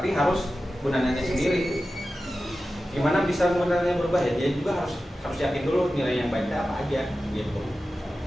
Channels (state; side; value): normal; both; correlation 0.94